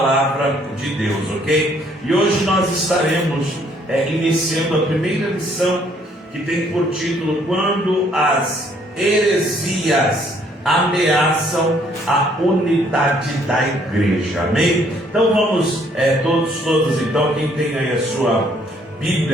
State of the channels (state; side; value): normal; both; correlation 0.64